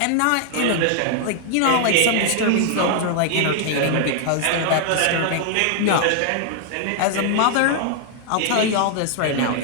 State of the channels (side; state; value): both; different; correlation 0.00